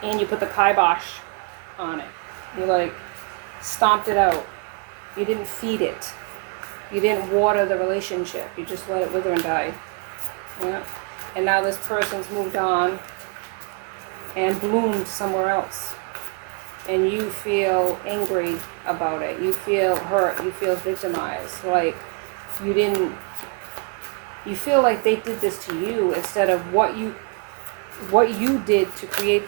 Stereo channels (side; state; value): left; quieter; 34.5 dB